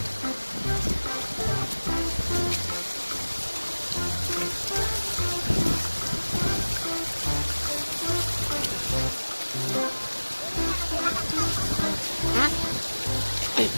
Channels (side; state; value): both; inverted; correlation -1.00